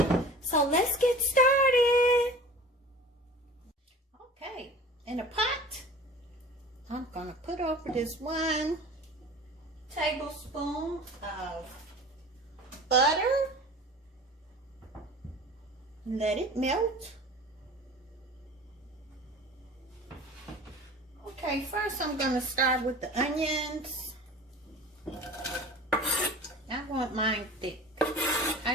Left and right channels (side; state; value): both; normal; correlation 0.40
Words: So let's get started. Okay, in a pot, I'm gonna put over this 1 tablespoon of butter. Let it melt. Okay, first I'm going to start with the onions. I want mine thick.